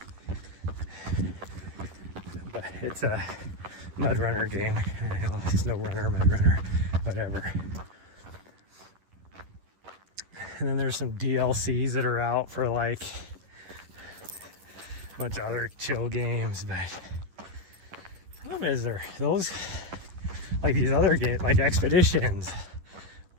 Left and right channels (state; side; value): late; left; 11 ms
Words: But it's a mud runner game. I know, snow runner, mud runner, whatever. And then there's some DLCs that are out for like a bunch of other chill games, but the problem is there those like these other games like Expeditions